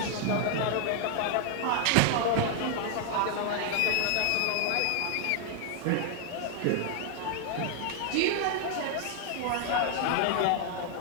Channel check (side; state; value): both; different; correlation 0.00